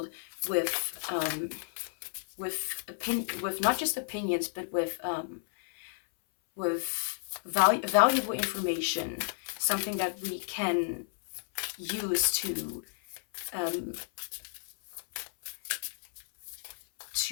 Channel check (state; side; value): silent; right; 56 dB below the other